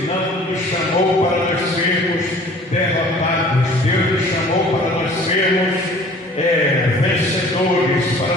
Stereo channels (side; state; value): both; normal; correlation 0.49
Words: não nos chamou para nós sermos derrotados. Deus nos chamou para nós sermos vencedores, para